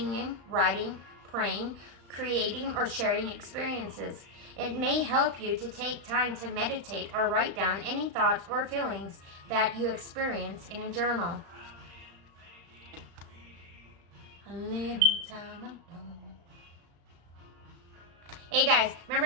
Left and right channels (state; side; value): late; left; 35 ms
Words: writing, praying, creating, or sharing experiences. It may help you to take time to meditate or write down any thoughts or feelings that you experience in a journal. A little time alone. Hey guys, remember